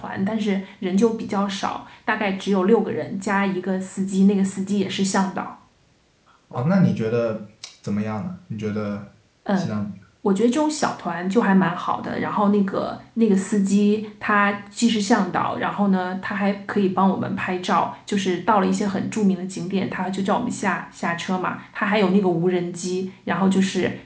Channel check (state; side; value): identical; both; correlation 1.00